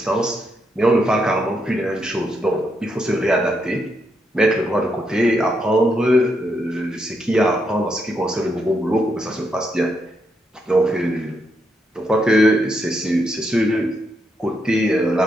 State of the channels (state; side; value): normal; both; correlation 0.80